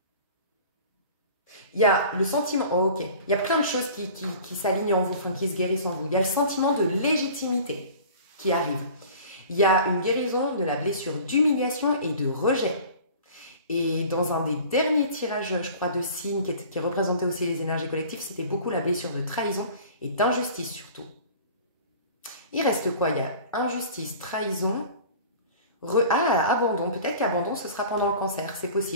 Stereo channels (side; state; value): both; inverted; correlation -0.43